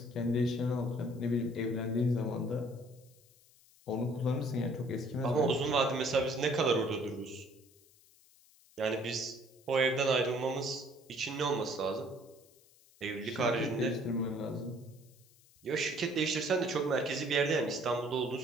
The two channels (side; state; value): left; noise; hiss, 28 dB below the sound